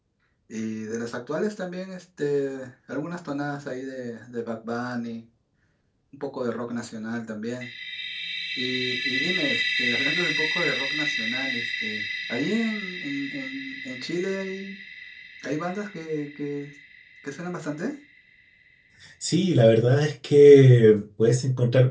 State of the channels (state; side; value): identical; both; correlation 1.00